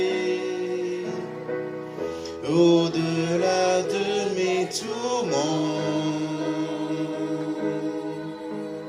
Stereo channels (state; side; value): identical; both; correlation 1.00